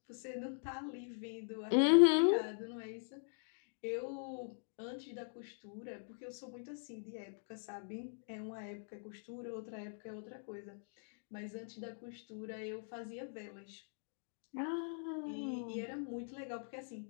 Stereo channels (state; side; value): silent; right; digital silence